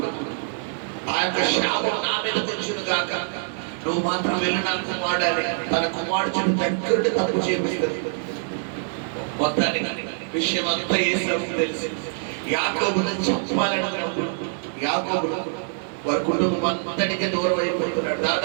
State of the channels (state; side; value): silent; left; 62 dB below the other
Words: ఆ యొక్క శాపం నా మీద తెచ్చును కాక, నువ్వు మాత్రం వెళ్ళి నా కుమారుడని తన కుమారుడు దగ్గర తప్పు చేపిస్తుంది. మొత్తానికి విషయం అంతా ఏసావుకు తెలిసి యాకోబును చెప్పాలనుకున్నప్పుడు యాకోబు వారి కుటుంబం అంతటికి దూరం అయిపోతున్నాడు.